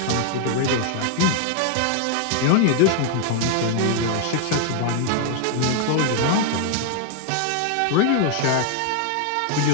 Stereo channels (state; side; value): different; both; correlation 0.00